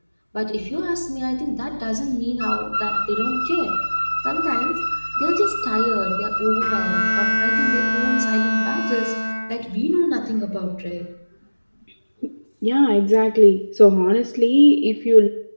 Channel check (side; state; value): both; inverted; correlation -1.00